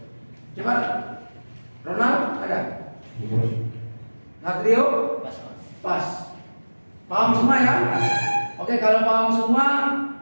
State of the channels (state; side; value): inverted; both; correlation -1.00